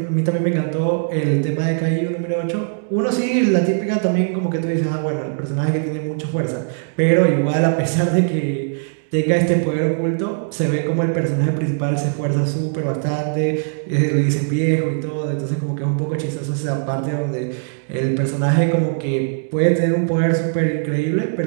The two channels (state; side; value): silent; left; digital silence